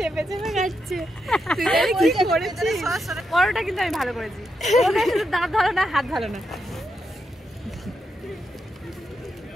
চেপে খাচ্ছে। পরোটা কিন্তু আমি ভালো করেছি, দাঁত ভালো না, হাত ভালো না।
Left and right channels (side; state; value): both; normal; correlation 0.84